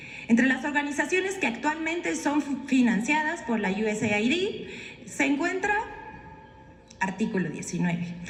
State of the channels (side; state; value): both; identical; correlation 1.00